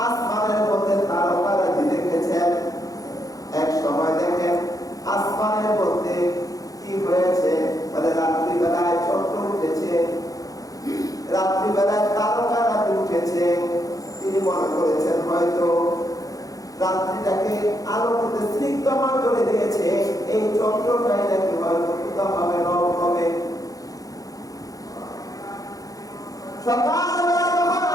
আসমানের মধ্যে তারকারাজি দেখেছেন। এক সময় দেখেন আসমানের মধ্যে কি হয়েছে, মানে রাত্রিবেলায় চন্দ্র উঠেছে, রাত্রিবেলায় তারকারাজি উঠেছে। তিনি মনে করেছেন হয়তো রাত্রিটাকে আলোতে স্নিগ্ধময় করে দিয়েছে, এই চন্দ্রটাই নাকি হয়তো কোথাও হবে, রব হবে। সকালবেলা যখন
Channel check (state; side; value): late; right; 0.17 ms